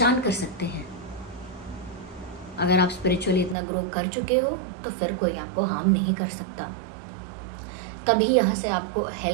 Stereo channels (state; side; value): drops out; left; at 3.6 s